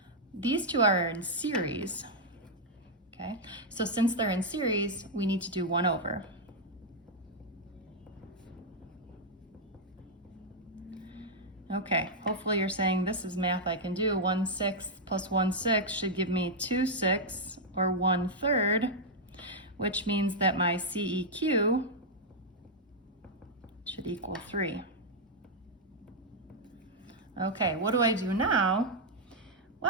these two are in series, okay? So since they're in series, we need to do 1 over. Okay, hopefully you're saying this is math I can do. 1/6 plus 1/6 should give me 2/6 or 1/3, which means that my CEQ should equal 3. Okay, what do I do now?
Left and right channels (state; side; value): normal; both; correlation -0.04